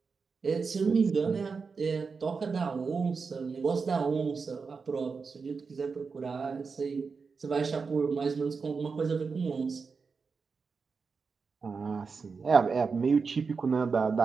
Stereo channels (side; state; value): left; quieter; 5.0 dB